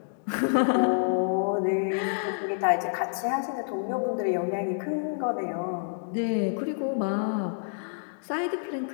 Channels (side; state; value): right; silent; digital silence